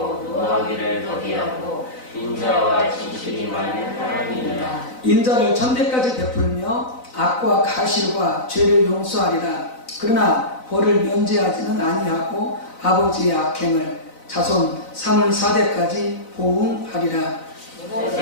노하기를 더디하고 인자와 진실이 많은 하나님이라. 인자를 천대까지 베풀며 악과 가실과 죄를 용서하리라. 그러나 벌을 면제하지는 아니하고 아버지의 악행을 자손 3, 4대까지 보응하리라.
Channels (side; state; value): right; late; 4.0 ms